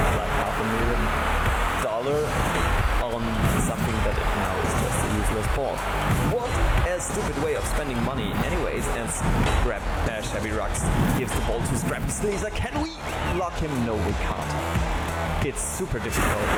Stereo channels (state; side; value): identical; both; correlation 1.00